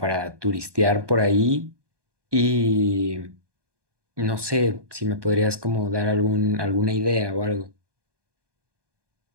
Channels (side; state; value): left; late; 1.2 ms